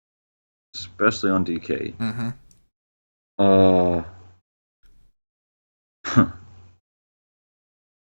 especially on DK. Mm-hmm.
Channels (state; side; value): inverted; both; correlation -1.00